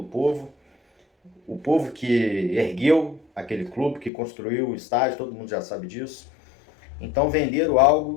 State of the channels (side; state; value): right; drops out; at 4.1 s